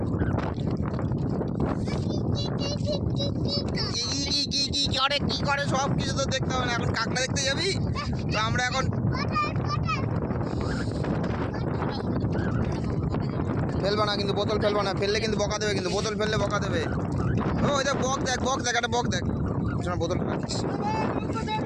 কি করে সব কিছু তো দেখতে হবে না, এখন কাঁকড়া দেখতে যাবি তো। আমরা এখন ফেলবা না কিন্তু, বোতল ফেলবা না, ফেললে কিন্তু বকা দেবে, কিন্তু বোতল ফেললে বকা দেবে। ও ওই দেখ বক দেখ, একটা বক দেখ, শোনা বোতল রাখিস।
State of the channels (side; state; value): both; identical; correlation 1.00